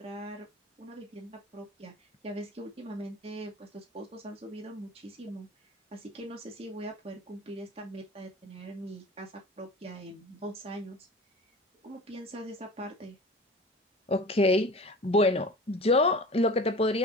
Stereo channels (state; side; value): normal; both; correlation 0.38